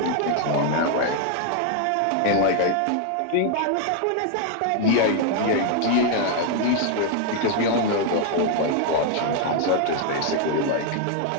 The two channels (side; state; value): both; different; correlation 0.00